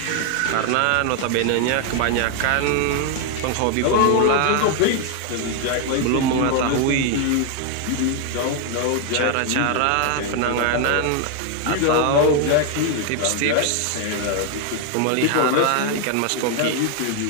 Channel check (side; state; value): both; different; correlation 0.00